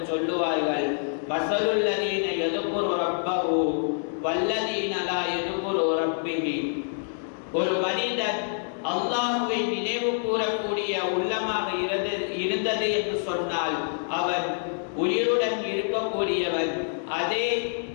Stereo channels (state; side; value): silent; right; digital silence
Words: சொல்லுவார்கள், மஸலுல் லதீன யذ்குரு ரப்பஹு வல்லதீன லா யذ்குரு ரப்பிஹி, ஒரு மனிதன் அல்லாஹ்வை நினைவு கூறக்கூடிய உள்ளமாக இருந்தது என்று சொன்னால் அவன் உயிருடன் இருக்கக்கூடியவன். அதே